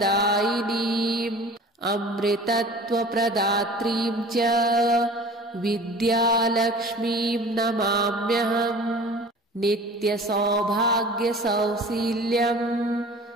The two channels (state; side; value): normal; both; correlation 0.43